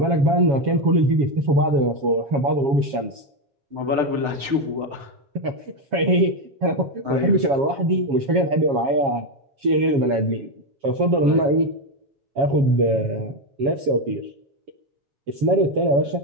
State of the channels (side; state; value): left; late; 7.3 ms